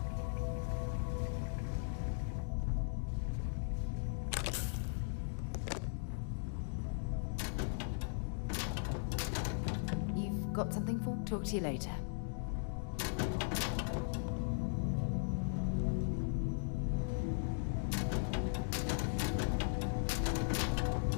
You've got something for me? Talk to you later.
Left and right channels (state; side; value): silent; right; digital silence